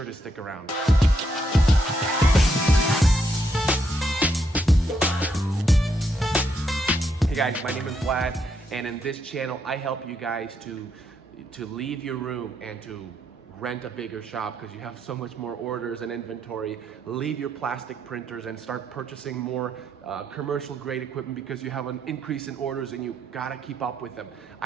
to stick around. Hey guys, my name is Vlad, and in this channel, I help you guys to leave your room and to rent a bigger shop because you have so much more orders and inventory. Leave your plastic printers and start purchasing more commercial grade equipment because you have an increase in orders and you gotta keep up with them.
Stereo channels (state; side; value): normal; both; correlation 0.77